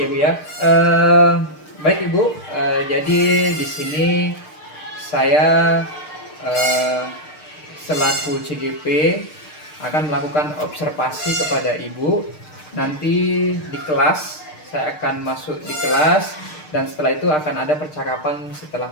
Bu ya. Baik Ibu, jadi di sini saya eh, selaku CGP akan melakukan observasi kepada Ibu. Nanti di kelas saya akan masuk di kelas dan setelah itu akan ada percakapan setelah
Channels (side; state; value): right; late; 6.6 ms